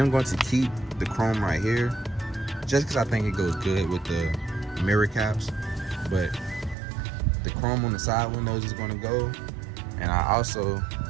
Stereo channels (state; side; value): drops out; left; at 6.8 s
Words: going to keep the chrome right here just because I think it goes good with the mirror caps. But the chrome on the side windows is going to go, and I also